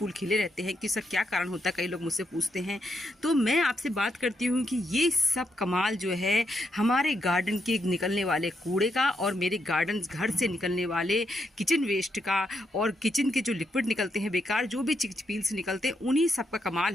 खिले रहते हैं कि सर क्या कारण होता है, कई लोग मुझसे पूछते हैं। तो मैं आपसे बात करती हूँ कि ये सब कमाल जो है हमारे गार्डन के निकलने वाले कूड़े का और मेरे गार्डन घर से निकलने वाले किचन वेस्ट का और किचन के जो लिक्विड निकलते हैं बेकार, जो भी चिकपील्स निकलते हैं, उन्हीं सब का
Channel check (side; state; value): both; normal; correlation 0.80